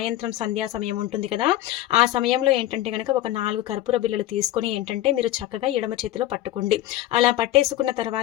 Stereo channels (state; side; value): quieter; right; 14.6 dB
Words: సంధ్యా సమయం ఉంటుంది కదా, ఆ సమయంలో ఏంటంటే గనక ఒక 4 కర్పూర బిళ్ళలు తీసుకొని ఏంటంటే మీరు చక్కగా ఎడమ చేతిలో పట్టుకోండి. అలా పట్టేసుకున్న